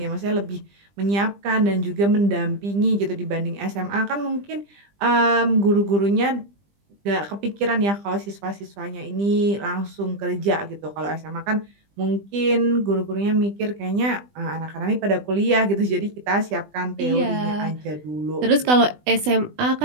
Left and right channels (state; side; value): late; left; 20 ms